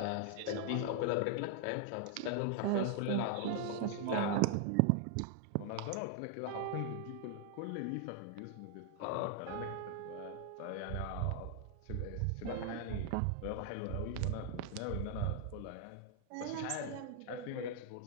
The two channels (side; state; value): both; different; correlation 0.00